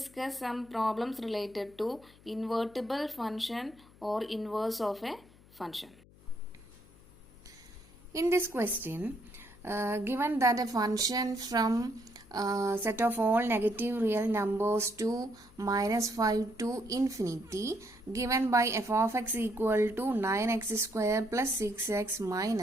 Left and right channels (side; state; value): left; noise; hum, 25 dB below the sound